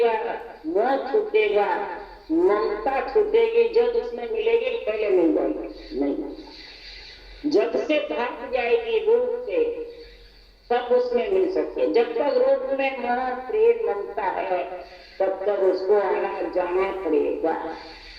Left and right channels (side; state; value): both; identical; correlation 1.00